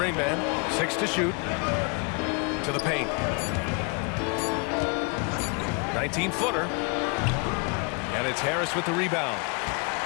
6 to shoot. To the paint. 19-footer. And it's Harris with the rebound.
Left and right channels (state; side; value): quieter; right; 33.5 dB